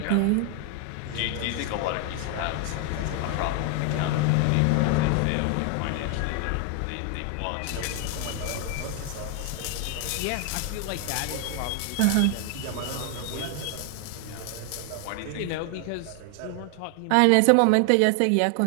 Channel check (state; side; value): different; both; correlation 0.01